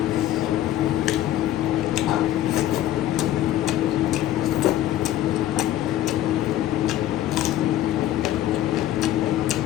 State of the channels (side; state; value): right; quieter; 13.0 dB